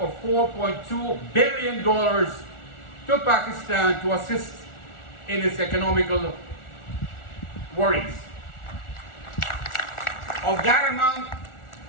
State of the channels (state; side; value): late; right; 1.4 ms